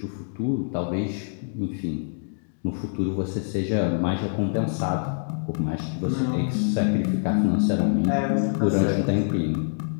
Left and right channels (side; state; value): right; silent; digital silence